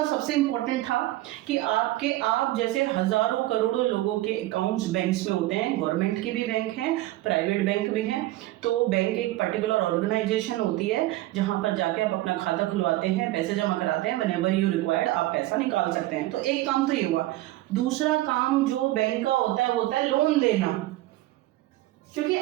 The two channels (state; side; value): quieter; left; 17.1 dB